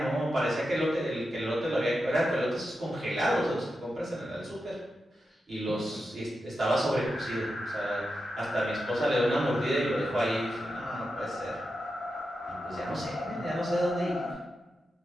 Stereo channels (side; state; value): both; normal; correlation 0.89